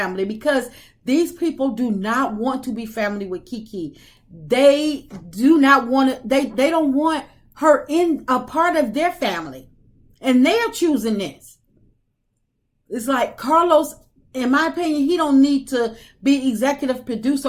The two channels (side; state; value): both; identical; correlation 1.00